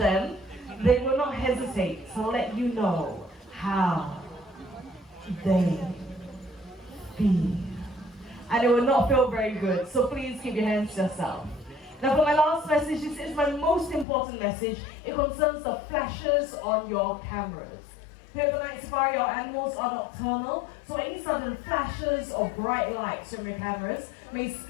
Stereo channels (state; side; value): drops out; right; at 14.1 s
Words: they will not hesitate to let you know how they feel. And it will not feel very good, so please keep your hands to yourself. Now for my last message, this is my most important message. It concerns the flashes on your cameras. Here at the Night Safari, our animals are nocturnal, so any sudden flashes or bright lights from your cameras may